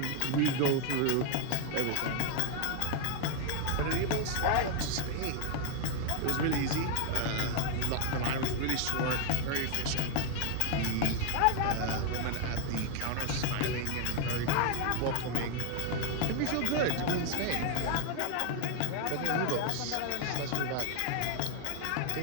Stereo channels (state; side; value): different; both; correlation 0.01